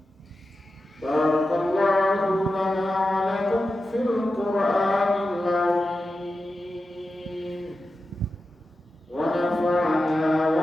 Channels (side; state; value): both; normal; correlation 0.92